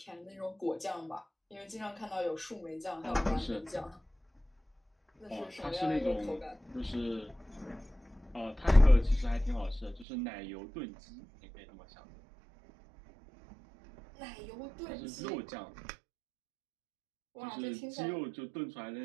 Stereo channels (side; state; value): left; drops out; at 10.1 s